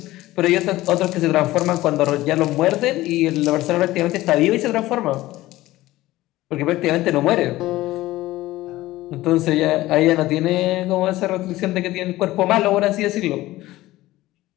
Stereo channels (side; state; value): right; quieter; 17.0 dB